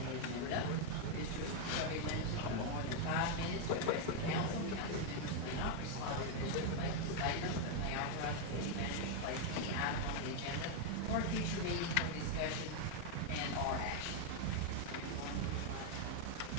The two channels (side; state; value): both; different; correlation 0.00